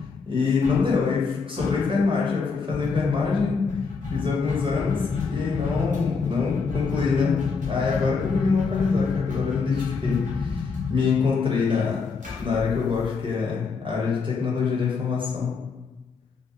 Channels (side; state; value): right; quieter; 4.9 dB